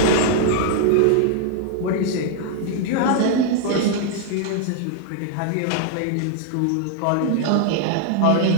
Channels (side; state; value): both; different; correlation 0.00